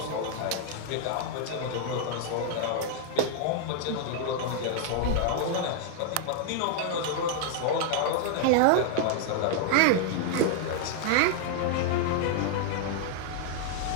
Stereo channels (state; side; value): different; both; correlation -0.01